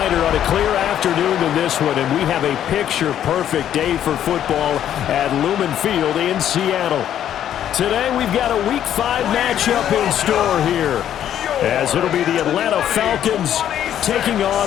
on a clear afternoon than this one, and we have a picture-perfect day for football at Lumen Field in Seattle. Today, we've got a Week 5 matchup in store here, as it'll be the Atlanta Falcons taking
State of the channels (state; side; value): quieter; right; 10.5 dB